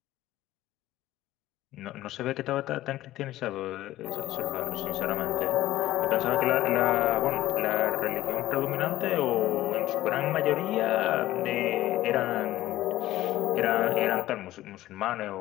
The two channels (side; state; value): right; quieter; 15.2 dB